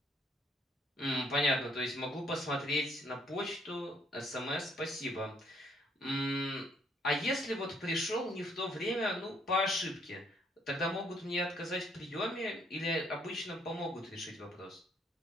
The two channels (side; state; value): both; normal; correlation 0.67